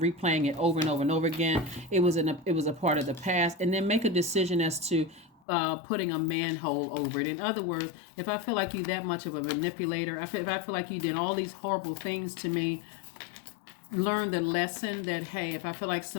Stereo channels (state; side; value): drops out; right; at 5.4 s